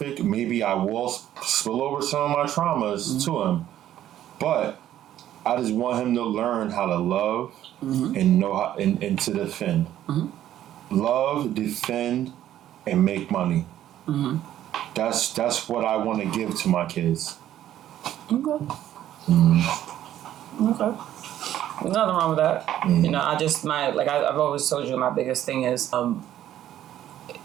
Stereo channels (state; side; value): quieter; left; 12.0 dB